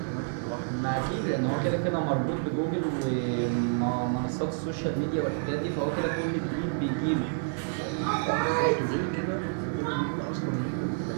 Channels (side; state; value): left; silent; 59 dB below the other